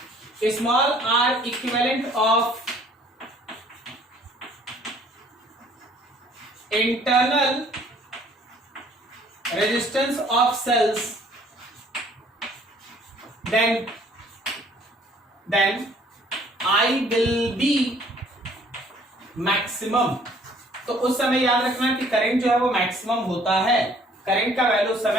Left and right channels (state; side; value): normal; both; correlation 0.58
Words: small r equivalent of internal resistance of cells, then I will be maximum। तो उस समय याद रखना कि करंट जो है वो मैक्सिमम होता है। करंट का वैल्यू उस